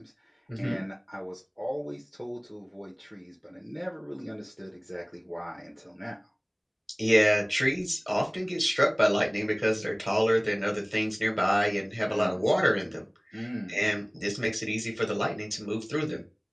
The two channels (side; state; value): both; identical; correlation 1.00